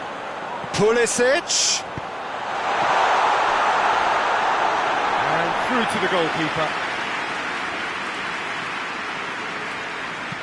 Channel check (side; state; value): both; identical; correlation 1.00